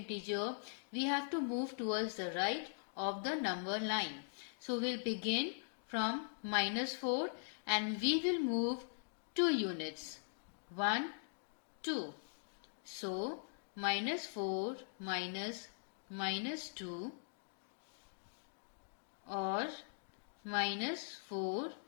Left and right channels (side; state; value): right; silent; digital silence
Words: we have to move towards the right of the number line. So, we'll begin from minus 4 and we will move 2 units. 1, 2. So, minus 4 minus 2 or minus 4